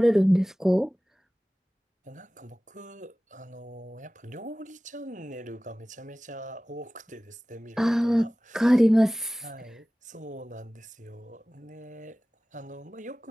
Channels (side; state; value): both; normal; correlation 0.97